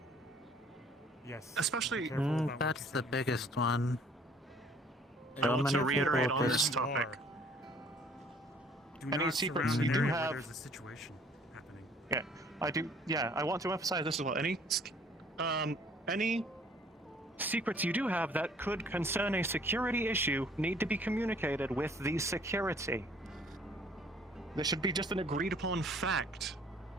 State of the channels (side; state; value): both; normal; correlation 0.57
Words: Yes. Especially- be careful about what That's you the biggest one. I want to many reiterate people on this just- topic. Do Any not secrets surround you an do area where have- there's a situation happening. Yeah, I do. Yeah, I want to emphasize this as well. Any secrets you do have that could concern a security issue need to be communicated with the security. There should be just an agreed upon fact.